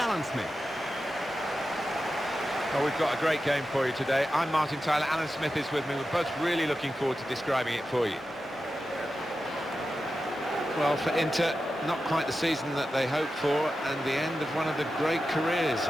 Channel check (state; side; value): normal; both; correlation 0.91